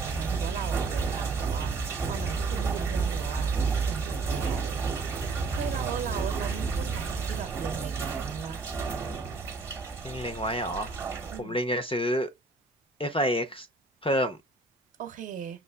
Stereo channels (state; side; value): quieter; left; 3.4 dB